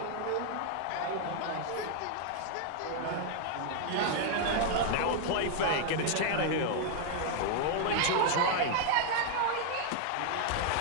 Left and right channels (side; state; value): both; different; correlation 0.00